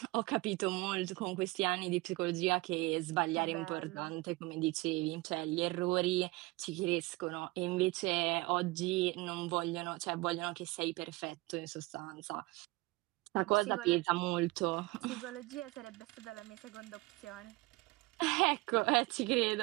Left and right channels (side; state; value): left; quieter; 22.3 dB